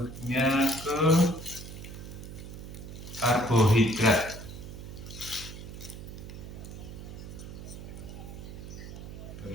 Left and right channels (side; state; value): right; noise; hum, 11 dB below the sound